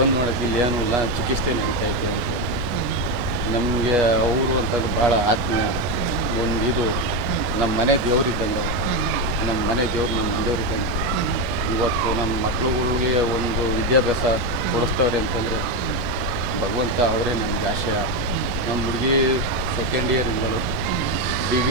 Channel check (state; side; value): late; left; 10 ms